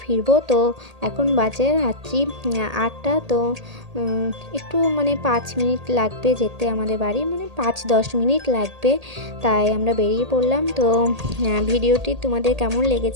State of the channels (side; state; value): left; late; 1.8 ms